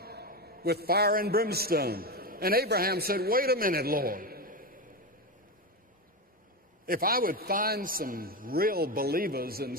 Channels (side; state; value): both; normal; correlation 0.15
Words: with fire and brimstone. And Abraham said, "Wait a minute, Lord. If I would find some real believers in